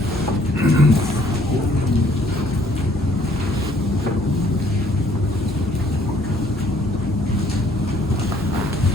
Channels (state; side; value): normal; both; correlation 0.62